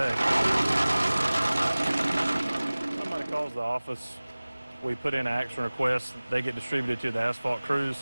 Somebody calls the office, we put in an action request, they get distributed to the asphalt crews,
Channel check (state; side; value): inverted; both; correlation -0.99